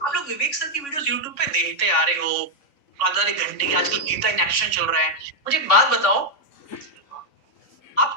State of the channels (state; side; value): late; right; 3.6 ms